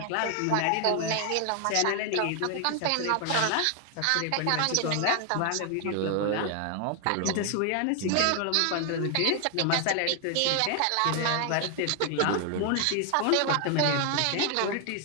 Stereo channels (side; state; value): both; different; correlation 0.00